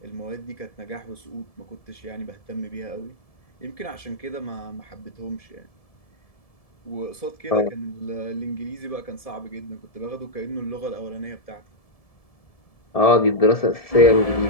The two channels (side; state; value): right; late; 1.7 ms